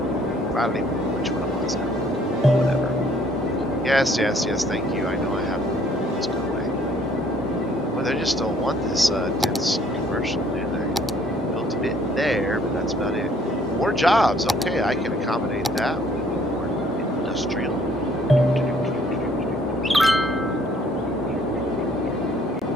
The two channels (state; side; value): normal; both; correlation 0.61